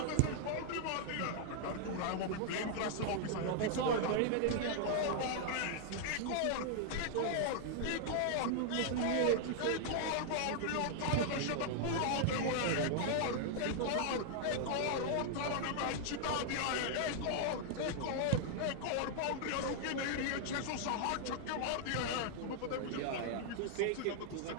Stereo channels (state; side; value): different; both; correlation 0.00